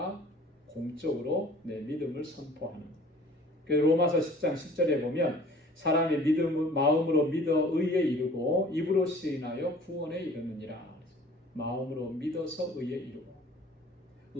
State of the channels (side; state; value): both; normal; correlation 0.49